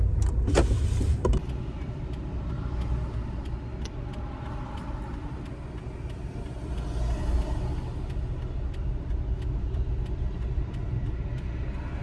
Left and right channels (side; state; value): both; identical; correlation 1.00